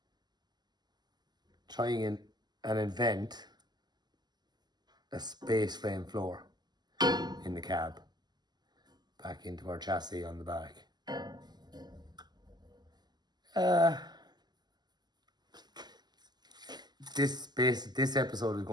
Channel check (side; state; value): left; late; 0.21 ms